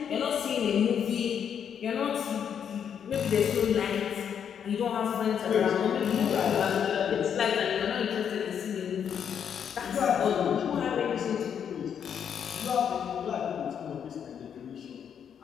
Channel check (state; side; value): quieter; right; 8.1 dB